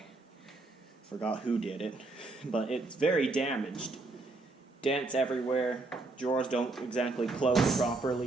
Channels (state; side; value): quieter; left; 3.3 dB